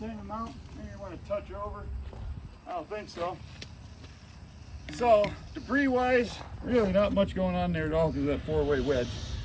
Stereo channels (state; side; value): identical; both; correlation 1.00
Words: amount. Maybe you want to touch over. I don't think so. So debris wise, really not much going on there at all because of that four-way wedge